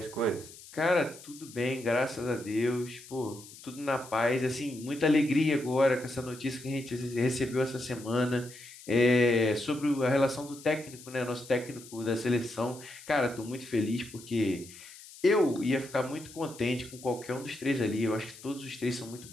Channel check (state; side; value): noise; left; hiss, 18 dB below the sound